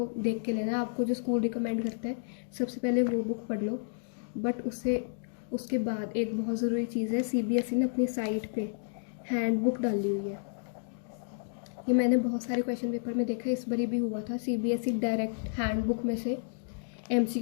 देख के लेना है। आपको जो स्कूल रिकमेंड करता है सबसे पहले वो बुक पढ़ लो, बट उसके बाद एक बहुत ज़रूरी चीज़ है, सीबीएसई ने अपनी साइट पे हैंडबुक डाली हुई है। ये मैंने बहुत सारे क्वेश्चन पेपर में देखा, इस बारी भी हुआ था। सीबीएसई डायरेक्ट हैंडबुक में से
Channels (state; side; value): silent; right; digital silence